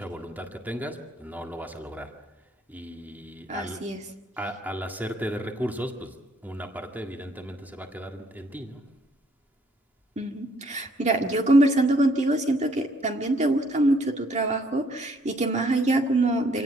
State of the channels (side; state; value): both; normal; correlation 0.65